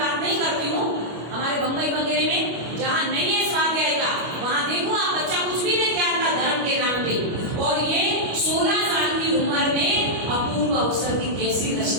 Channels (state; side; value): late; left; 25 ms